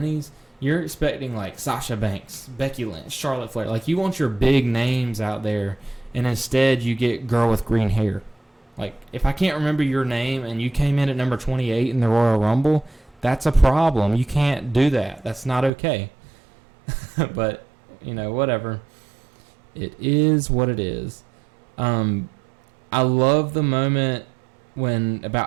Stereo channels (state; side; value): drops out; left; at 15.7 s